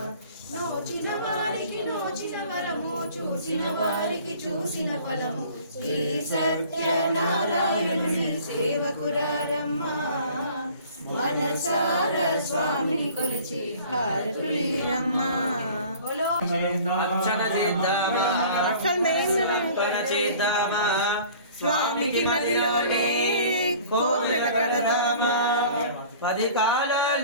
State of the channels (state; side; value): inverted; both; correlation -0.48